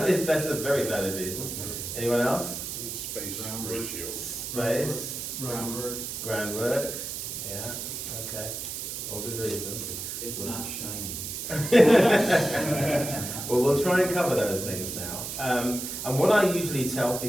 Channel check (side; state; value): right; noise; hiss, 6 dB below the sound